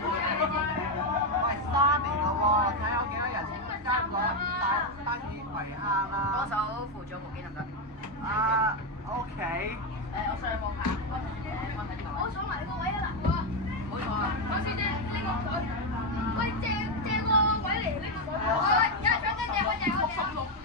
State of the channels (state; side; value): normal; both; correlation 0.07